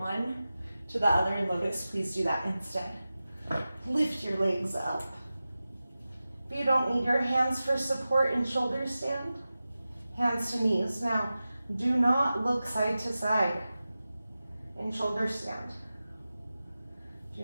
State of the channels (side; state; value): both; inverted; correlation -0.95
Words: to the other in lotus, please do that instead. Lift your legs up. If you don't need your hands for support in shoulder stand, hands to knees. Now, do not look side to side in shoulder stand.